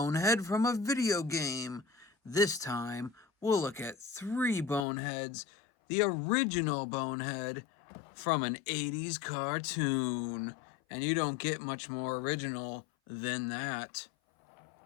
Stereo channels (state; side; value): drops out; right; at 4.9 s